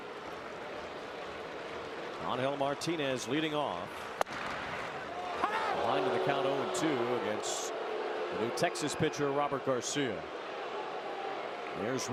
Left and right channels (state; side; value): identical; both; correlation 1.00